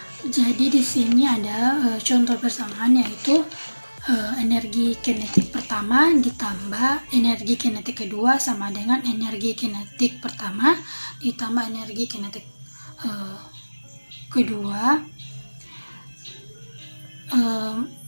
Jadi di sini ada contoh persamaan yaitu energi kinetik pertama ditambah energi kinetik kedua sama dengan energi kinetik pertama ditambah energi kinetik kedua.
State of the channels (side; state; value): both; inverted; correlation -1.00